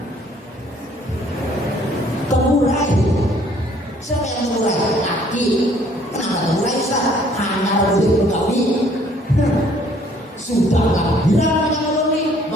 tegurai. Siapa yang tegurai? Laki. Kenapa tegurai sah? Hanya boleh begawi. Sudah lah, bilang yang boleh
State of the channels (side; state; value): both; normal; correlation 0.60